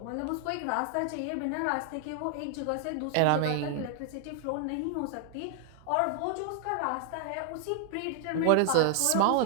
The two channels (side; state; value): both; different; correlation 0.00